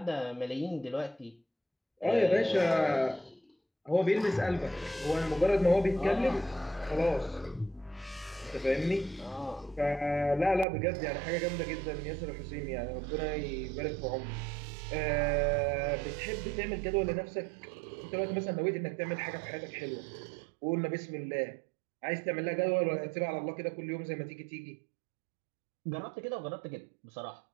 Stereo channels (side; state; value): left; drops out; at 10.7 s